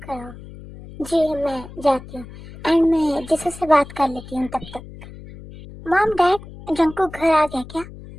कर आओ। जी मैं जाती हूँ। एंड मैं जिसू से बात कर लेती हूँ तब तक। मॉम डैड, जंकुक घर आ गया क्या?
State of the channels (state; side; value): noise; left; hum, 16 dB below the sound